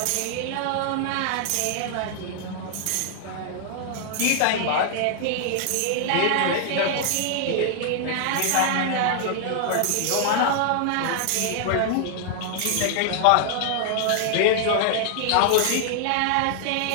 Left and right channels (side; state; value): both; different; correlation 0.00